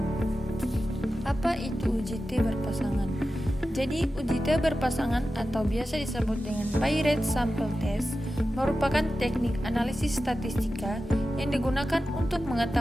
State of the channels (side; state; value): both; normal; correlation 0.93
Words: Apa itu UJT berpasangan? Jadi UJT berpasangan atau biasa disebut dengan Paired Sample Test merupakan teknik analisis statistika yang digunakan untuk